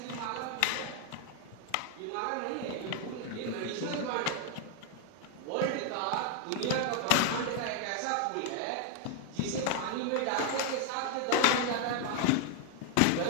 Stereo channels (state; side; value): different; both; correlation 0.00